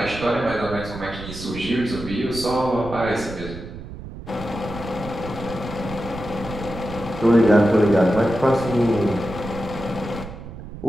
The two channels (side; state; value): right; noise; rumble, 12 dB below the sound